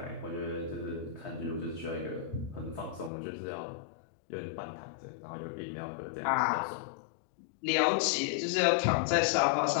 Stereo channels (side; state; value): right; drops out; at 3.1 s